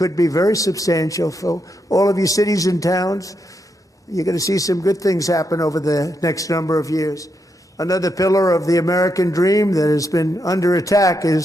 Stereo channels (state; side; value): normal; both; correlation 0.82